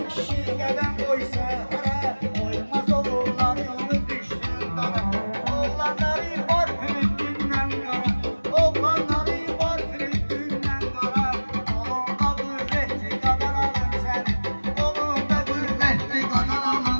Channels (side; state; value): both; inverted; correlation -1.00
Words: kişi qədəm qoysa hara, Qoymaz oğulları onu düşdürdar. Oğlanları var Filistin'den qara, Oğlanları var Filistin'den qara, Qolunda qüvvətli qadan alım səni, Qolunda qüvvətli qadan